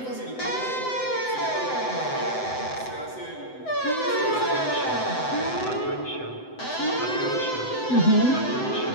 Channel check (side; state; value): right; late; 7.9 ms